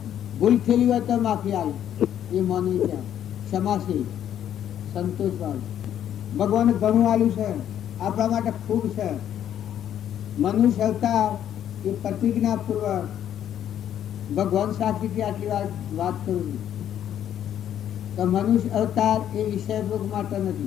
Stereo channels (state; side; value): quieter; right; 10.4 dB